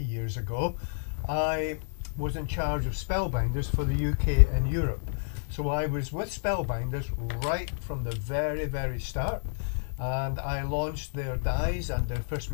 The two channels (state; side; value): silent; right; 58 dB below the other